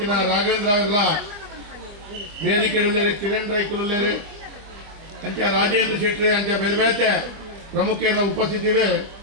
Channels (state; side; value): late; left; 25 ms